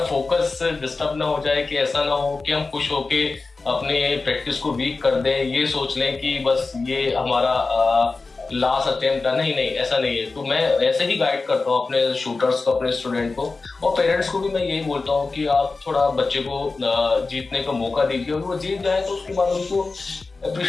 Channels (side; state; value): right; quieter; 3.9 dB